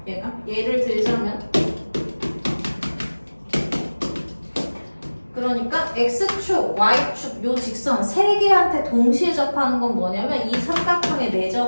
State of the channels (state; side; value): inverted; both; correlation -1.00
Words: 얘가 예를 들자면 그러니까 X축, Y축 요 직선 세 개한테 동시에 접하는 건 뭐냐면 이 삼각형의